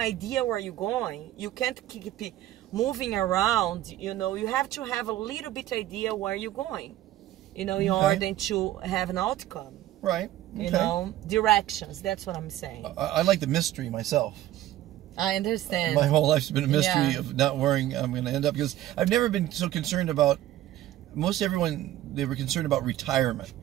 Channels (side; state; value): left; quieter; 13.9 dB